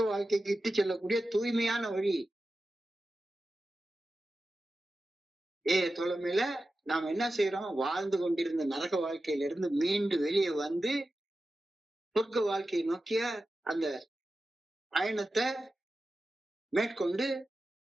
வாழ்க்கைக்கு இட்டு செல்லக்கூடிய தூய்மையான வழி. தோழமையில நாம் என்ன செய்யறோம்? வாழ்ந்து கொண்டிருந்த நரக வாழ்க்கையிலிருந்து மீண்டு வெளியே சொர்க்க வாழ்க்கையை நோக்கிய அந்த பயணத்தை மேற்கொண்டு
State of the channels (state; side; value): normal; both; correlation 0.93